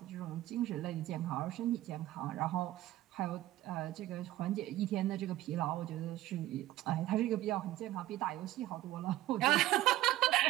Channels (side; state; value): left; quieter; 15.1 dB